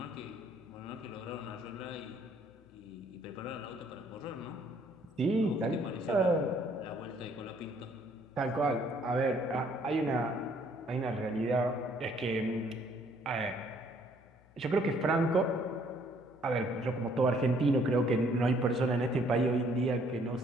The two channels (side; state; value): left; noise; hum, 27 dB below the sound